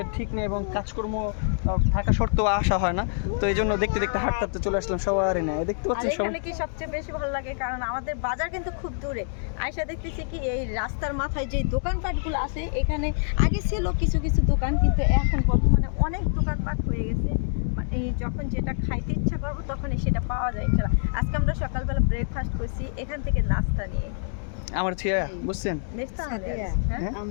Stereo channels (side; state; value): right; silent; digital silence